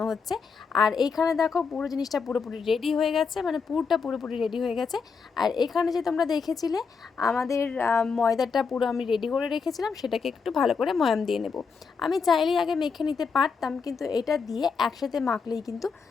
হচ্ছে। আর এইখানে দেখো পুরো জিনিসটা পুরোপুরি রেডি হয়ে গেছে, মানে পুরটা পুরোপুরি রেডি হয়ে গেছে। আর এখানে যে তোমরা দেখেছিলে আমাদের ময়দাটা পুরো আমি রেডি করে রেখেছিলাম, সেটাকে একটু ভালো করে ময়াম দিয়ে নেব। আমি চাইলেই আগে মেখে নিতে পারতাম, কিন্তু এটা দিয়ে একসাথে মাখলেই কিন্তু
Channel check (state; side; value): quieter; right; 5.4 dB